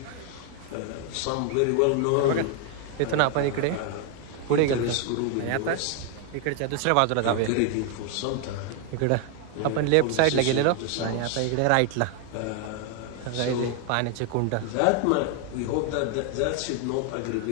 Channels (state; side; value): different; both; correlation 0.00